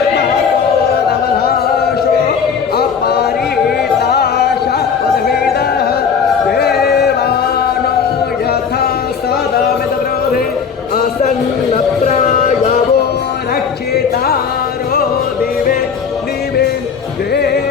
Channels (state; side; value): quieter; right; 6.4 dB